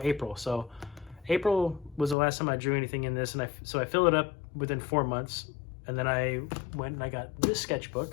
April. So April was the last time I drew anything in this, and I filled it up within 4 months. And then I went and I got this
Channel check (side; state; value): right; drops out; at 2.1 s